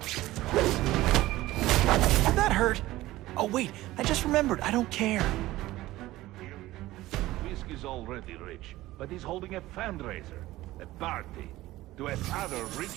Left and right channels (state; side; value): quieter; left; 16.9 dB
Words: That hurt! Oh wait, I just remembered, I don't care. Fisk is already rich, but he's holding a fundraiser, a party, to ask other